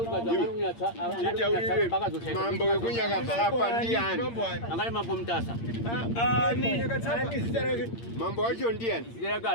mambo ekunyakatsapa ndiyani angari mambo mtasa ani mambo acho ndiyani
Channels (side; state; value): right; late; 8.7 ms